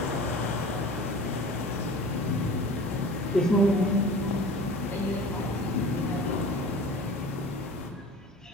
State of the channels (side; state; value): both; normal; correlation 0.39